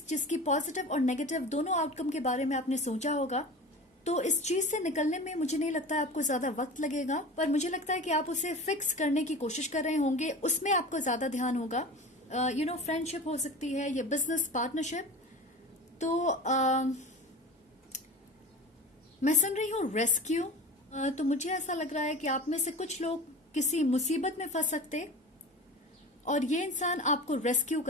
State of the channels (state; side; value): normal; both; correlation 0.34